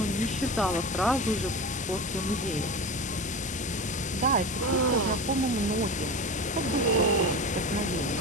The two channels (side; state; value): both; normal; correlation 0.27